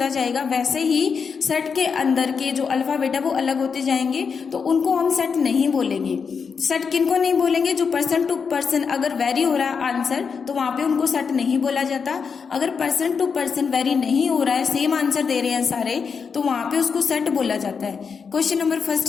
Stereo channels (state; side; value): quieter; right; 5.9 dB